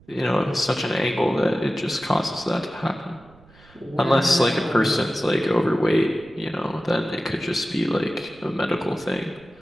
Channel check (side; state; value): right; noise; rumble, 27 dB below the sound